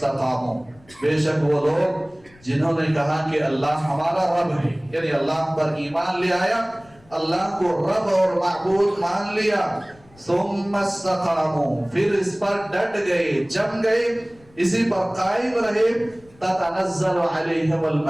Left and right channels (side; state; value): left; noise; rumble, 28 dB below the sound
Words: بے شک وہ لوگ جنہوں نے کہا کہ اللہ ہمارا رب ہے، یعنی اللہ پر ایمان لے آیا، اللہ کو رب اور معبود مان لیا، ثم استقاموا، پھر اس پر ڈٹ گئے، جم گئے، اسی پر قائم رہے، تتنزل علیہم